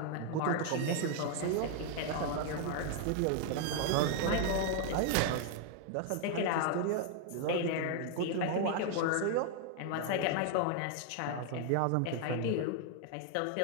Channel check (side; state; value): both; different; correlation 0.00